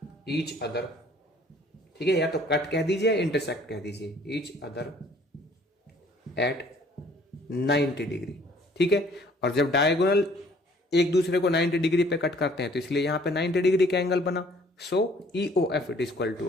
each other. ठीक है, या तो कट कह दीजिए या इंटरसेक्ट कह दीजिए, ईच अदर एट 90 डिग्री। ठीक है, और जब डायगोनल एक दूसरे को 90 डिग्री पे कट करते हैं तो इसलिए यहां पे 90 डिग्री का एंगल बना। So E O F it is equal to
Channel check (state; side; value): normal; both; correlation 0.58